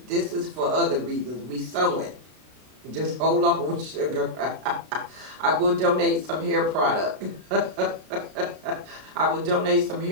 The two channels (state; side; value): late; left; 32 ms